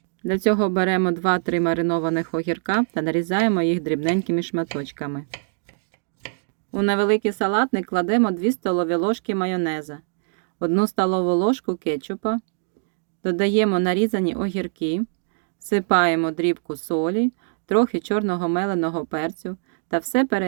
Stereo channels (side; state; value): left; silent; digital silence